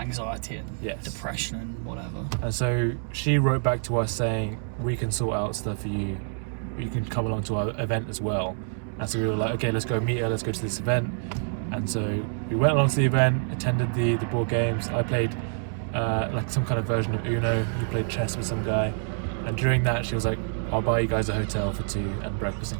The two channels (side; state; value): left; silent; 60 dB below the other